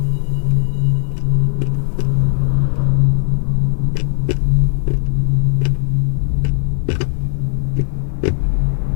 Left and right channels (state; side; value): silent; right; 68 dB below the other